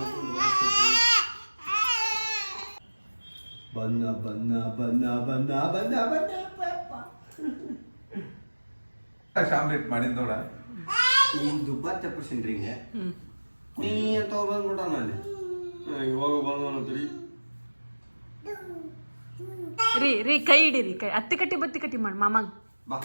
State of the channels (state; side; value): inverted; both; correlation -1.00